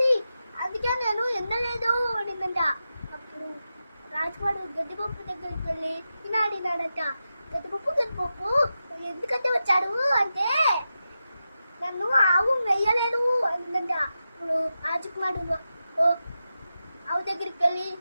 అందుకే నేను తినలేదు అనిందంట. అప్పుడు రాజకుమారుడు గడ్డిపప్పు దగ్గరికి వెళ్ళి ఇలా అడిగాడంట, గడ్డిపప్పు ఎందుకంటే వచ్చాడు అంటే, నన్ను ఆవు వెయ్యలేదు అందంట. ఇప్పుడు రాజకుమారుడు ఆవు దగ్గరికి వెళ్ళి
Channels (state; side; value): inverted; both; correlation -0.90